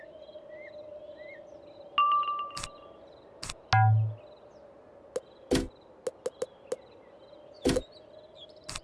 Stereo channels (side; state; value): both; identical; correlation 1.00